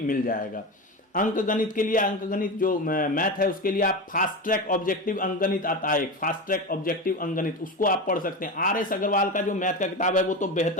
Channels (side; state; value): both; normal; correlation 0.22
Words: जाएगा। अंक गणित के लिए, अंक गणित जो मैथ है उसके लिए आप फास्ट ट्रैक ऑब्जेक्टिव अंक गणित आता है, एक फास्ट ट्रैक ऑब्जेक्टिव अंक गणित, उसको आप पढ़ सकते हैं। आर.एस. अग्रवाल का जो मैथ का किताब है वो तो